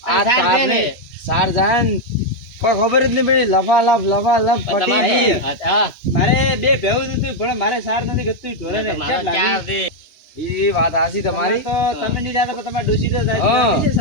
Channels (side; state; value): right; late; 2.9 ms